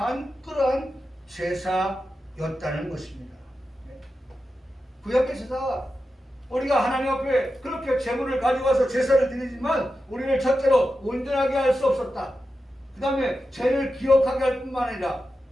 그러한 제사였다는 것입니다. 구약의 제사가 우리가 하나님 앞에 그렇게 제물을 가져와서 제사를 드리지만 우리를 첫째로 온전하게 할 수 없었다. 그 다음에 죄를 기억하게 할 뿐만 아니라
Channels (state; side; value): normal; both; correlation 0.91